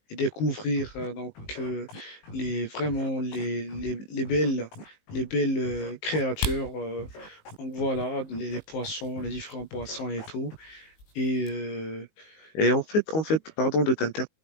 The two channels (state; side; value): late; right; 19 ms